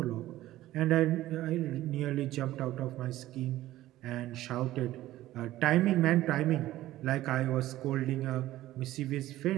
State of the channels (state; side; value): quieter; left; 15.2 dB